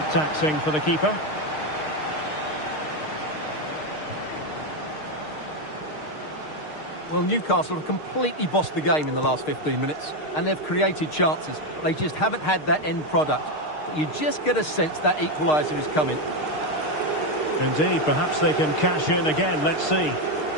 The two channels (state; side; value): late; right; 6.5 ms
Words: taxing for the keeper. Well, Newcastle have completely bossed the game in the last 15 minutes, and they've created chances, but they just haven't had that end product. But you just get a sense that equaliser is coming. Indeed, perhaps they can cash in again, let's see.